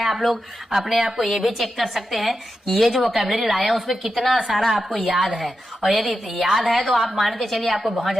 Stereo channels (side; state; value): both; normal; correlation 0.89